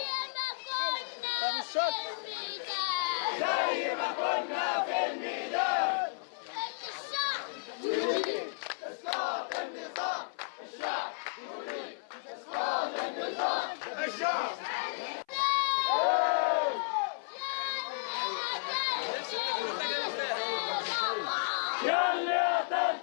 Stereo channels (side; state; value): right; silent; 56 dB below the other